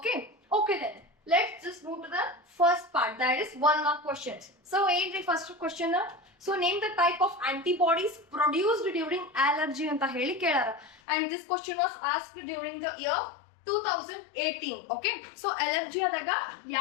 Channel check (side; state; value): right; drops out; at 11.0 s